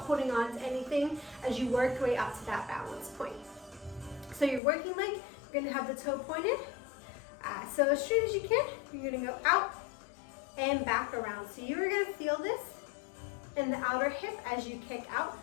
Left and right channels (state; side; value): drops out; right; at 4.6 s